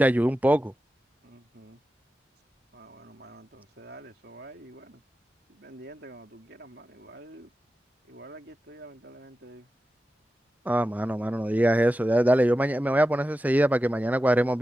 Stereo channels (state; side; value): normal; both; correlation 0.93